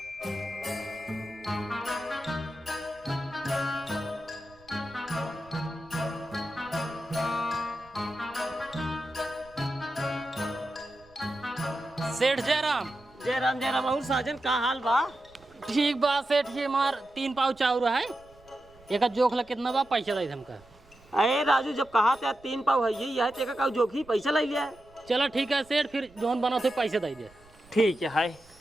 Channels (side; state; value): right; noise; rumble, 27 dB below the sound